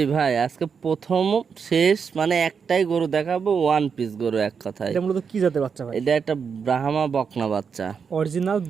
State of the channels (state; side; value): quieter; left; 6.2 dB